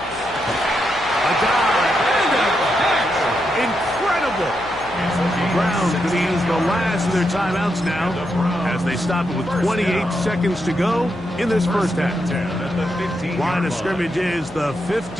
A dive and a catch. Incredible. Browns going to use the last of their timeouts now as they stop it with 28 seconds to go in this first half. Line of scrimmage is the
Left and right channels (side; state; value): left; noise; hum, 20 dB below the sound